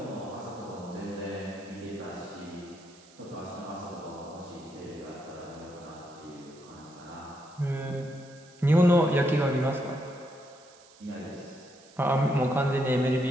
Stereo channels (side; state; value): right; noise; hiss, 25 dB below the sound